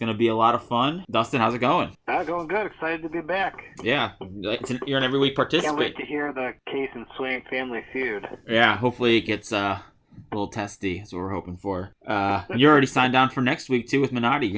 to be a lot of fun. Dustin, how's it going? Going good. Excited to be back. Yeah, you're an every week participant. Can't wait to hear the Case and Swain Family Feud. Yeah, hopefully it gets a little testy. That's what we're hoping for. You're already signed on for next week too with Minotti.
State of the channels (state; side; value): identical; both; correlation 1.00